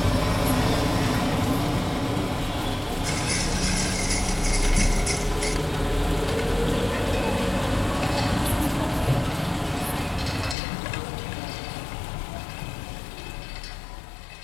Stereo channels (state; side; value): drops out; right; at 10.6 s